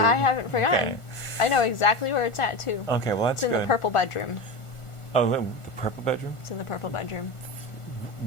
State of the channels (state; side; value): late; right; 1.4 ms